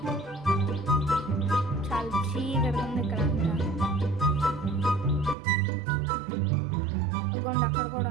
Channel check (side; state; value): left; drops out; at 5.4 s